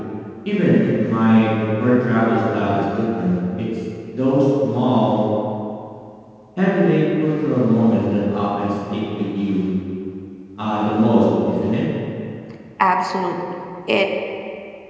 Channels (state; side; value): identical; both; correlation 1.00